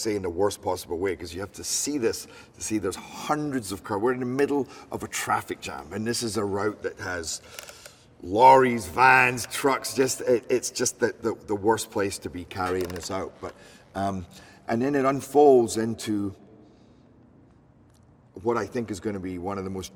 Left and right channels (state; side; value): identical; both; correlation 1.00